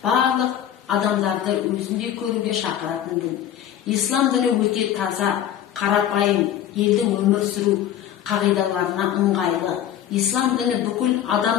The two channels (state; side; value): quieter; right; 10.7 dB